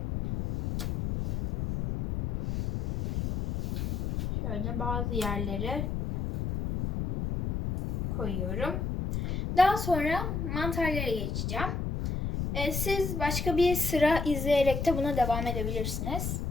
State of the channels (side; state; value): left; noise; rumble, 2 dB below the sound